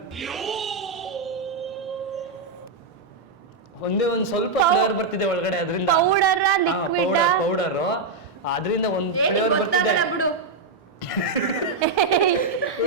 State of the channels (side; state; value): left; quieter; 4.0 dB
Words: ಒಂದೇ ಒಂದು ಸ್ವಲ್ಪ ಫ್ಲೇವರ್ ಬರ್ತಿದೆ ಒಳಗಡೆ ಅದರಿಂದ. ಪೌಡರ್ ಪೌಡರ್ ಅದರಿಂದ ಒಂದು ಫ್ಲೇವರ್ ಬರ್ತಿದೆ. ಬಿಡು.